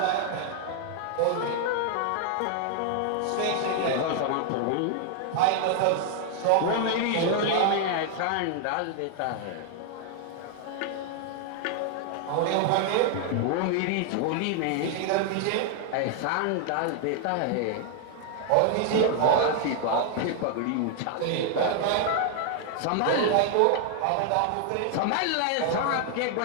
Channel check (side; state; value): both; different; correlation 0.00